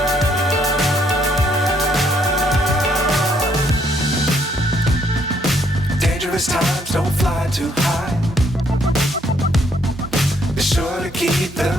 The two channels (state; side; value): normal; both; correlation 0.69